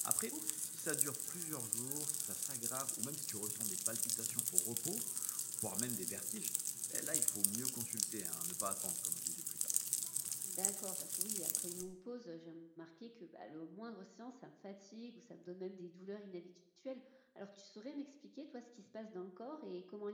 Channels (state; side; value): identical; both; correlation 1.00